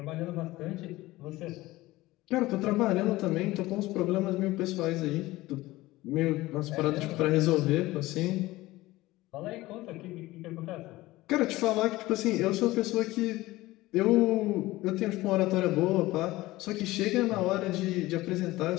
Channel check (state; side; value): quieter; right; 18.4 dB